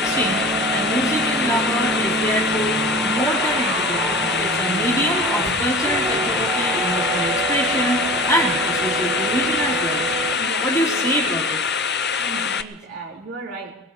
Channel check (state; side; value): normal; both; correlation 0.37